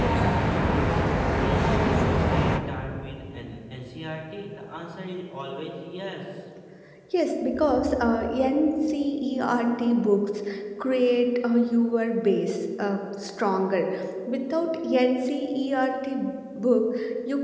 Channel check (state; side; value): identical; both; correlation 1.00